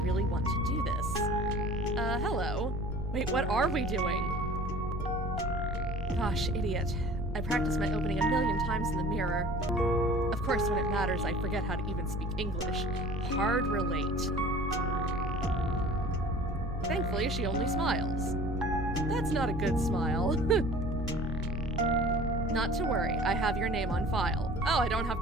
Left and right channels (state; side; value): noise; right; rumble, 8 dB below the sound